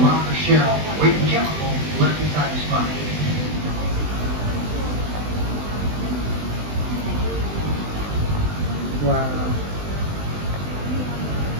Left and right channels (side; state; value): left; late; 20 ms